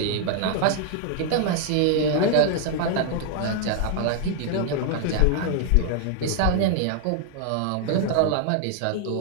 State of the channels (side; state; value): both; different; correlation 0.00